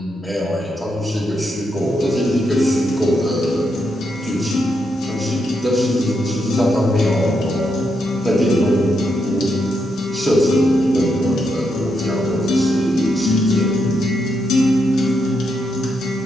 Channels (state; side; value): normal; both; correlation 0.81